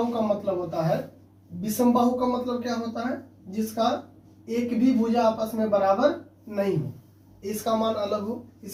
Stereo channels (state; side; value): identical; both; correlation 1.00